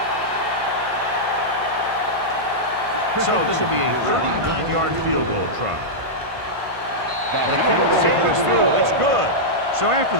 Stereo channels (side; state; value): left; late; 1.5 ms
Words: So this will be a 39-yard field goal try. The kick sails through. It's good. So after